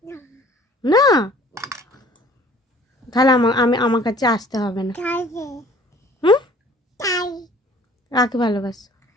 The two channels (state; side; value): normal; both; correlation 0.52